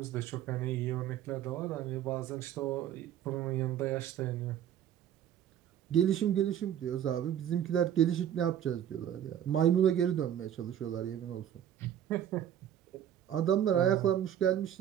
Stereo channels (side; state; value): left; quieter; 10.3 dB